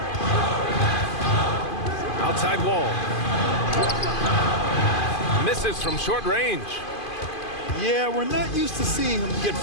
Outside Wall. Misses from short range. Yeah, we're not used to seeing him get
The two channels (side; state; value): right; late; 2.5 ms